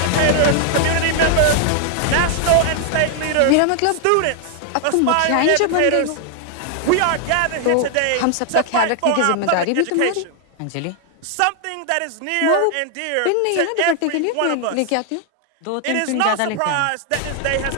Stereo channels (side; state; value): both; different; correlation 0.00